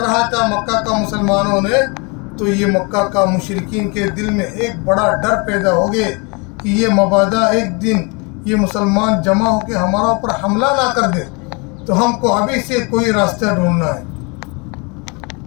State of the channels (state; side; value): quieter; right; 31.1 dB